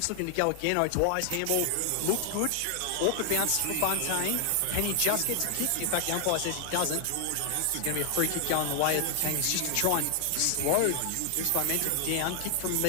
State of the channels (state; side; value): different; both; correlation 0.00